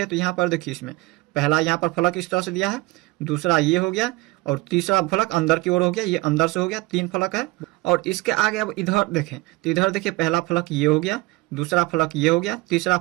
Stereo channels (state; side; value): quieter; left; 21.7 dB